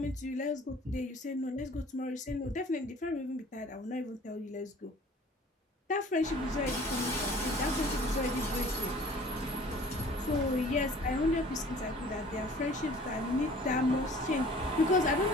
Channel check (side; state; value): both; normal; correlation 0.49